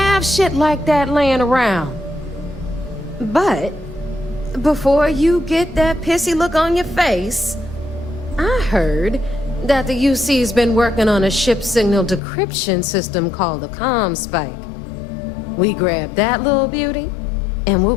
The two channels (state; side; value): drops out; right; at 12.2 s